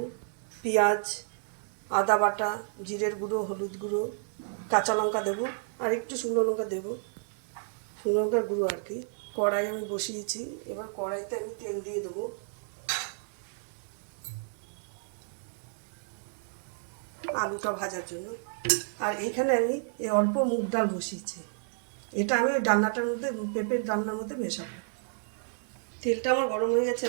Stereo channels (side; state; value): left; silent; digital silence